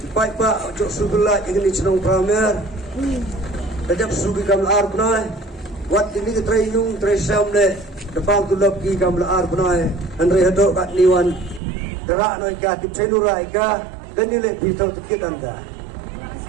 baik pak jok sebelah ini cenong pramer. Sejak sugi kami arbna, wat ini ketrayung tresam le. Depan tu loki kami arbna, andre hadok kat niwan. Derak noi ka tip cedura ika. Kanile pitau tikit anda.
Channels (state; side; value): drops out; left; at 11.6 s